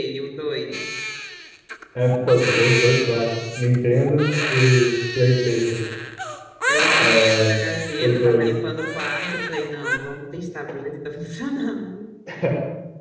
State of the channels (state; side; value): identical; both; correlation 1.00